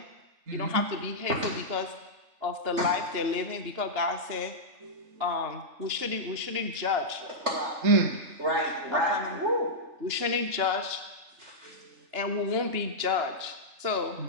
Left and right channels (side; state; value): left; late; 3.4 ms